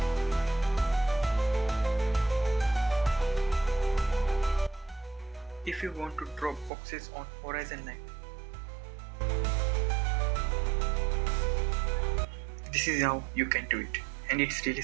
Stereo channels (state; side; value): drops out; left; at 6.7 s